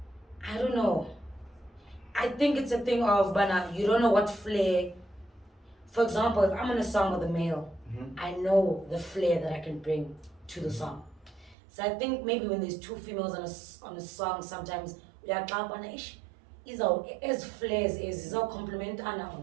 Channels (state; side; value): drops out; left; at 11.6 s